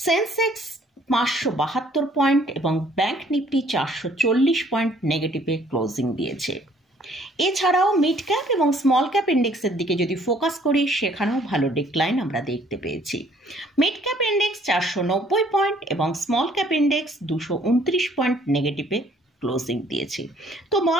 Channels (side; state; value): both; normal; correlation 0.60